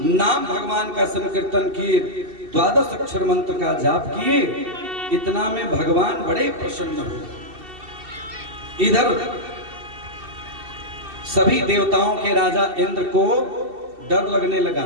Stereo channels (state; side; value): late; left; 2.7 ms